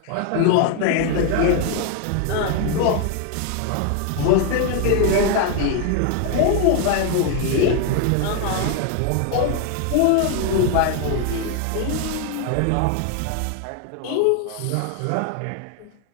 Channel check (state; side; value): different; both; correlation 0.01